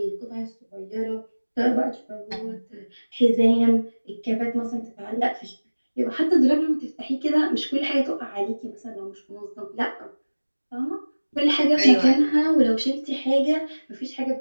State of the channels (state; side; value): inverted; both; correlation -1.00